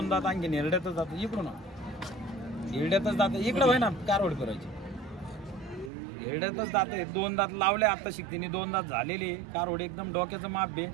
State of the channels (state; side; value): drops out; left; at 5.9 s